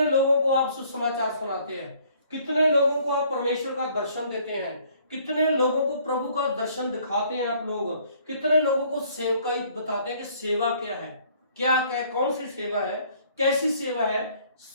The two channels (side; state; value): both; inverted; correlation -0.60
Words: लोगों को आप सुसमाचार सुनाते हैं? कितने लोगों को आप परमेश्वर का दर्शन देते हैं? कितने लोगों को प्रभु का दर्शन दिखाते हैं आप लोग? कितने लोगों को सेवकाई बताते हैं कि सेवा क्या है, क्या क्या कौन सी सेवा है, कैसी सेवा है?